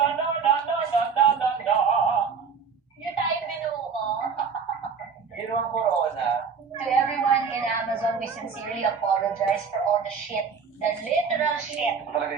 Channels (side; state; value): left; quieter; 5.8 dB